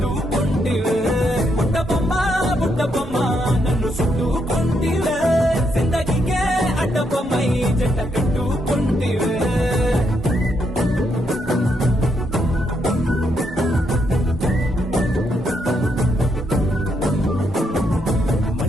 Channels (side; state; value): both; normal; correlation 0.77